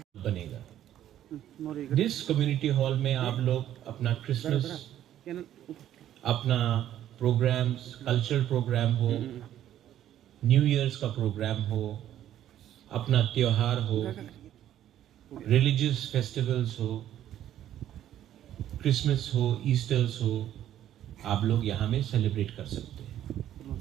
बनेगा जिस कम्युनिटी हॉल में आप लोग अपना क्रिसमस, अपना प्रोग्राम्स, कल्चरल प्रोग्राम हो, न्यू ईयर्स का प्रोग्राम हो, अपना त्योहार हो, रिलीजियस फेस्टिवल्स हो, क्रिसमस हो, ईस्टर्स हो, आप लोग यहाँ में सेलिब्रेट कर सकते हैं।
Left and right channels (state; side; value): quieter; left; 11.7 dB